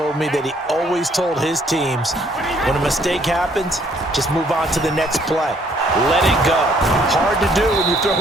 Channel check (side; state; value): both; normal; correlation 0.64